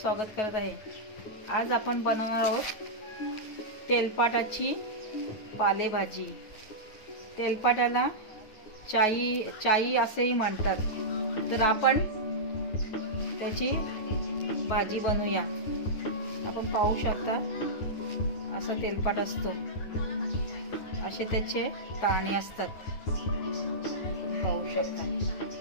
करत आहे। आज आपण बनवणार आहोत तेलपाटाची पालेभाजी। तेलपाटाला चाई असेही म्हणतात। तर आपण त्याची भाजी बनवूया। आपण पाहू शकता असा तेलपाट असतो, असे त्याचे दाणे असतात, पाहू शकता।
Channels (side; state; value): right; late; 9.3 ms